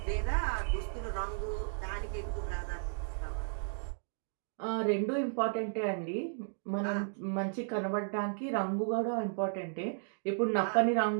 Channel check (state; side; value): silent; left; digital silence